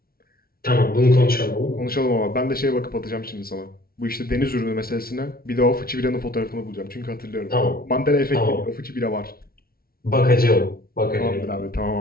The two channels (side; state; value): right; late; 0.44 ms